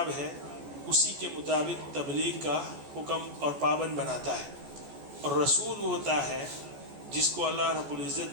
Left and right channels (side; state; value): left; late; 14 ms